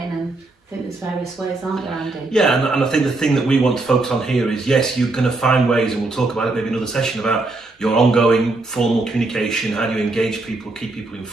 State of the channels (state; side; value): quieter; left; 3.1 dB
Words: and I think there's various ways, aren't there, Andy? Yeah, and I think the thing that we want to focus on here is, yes, you're going to find ways, and we'll talk about it maybe another session, about your ongoing formal communication, how do you engage people, keep people